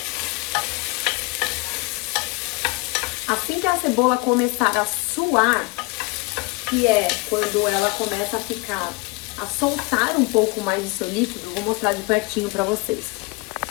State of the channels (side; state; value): right; quieter; 26.7 dB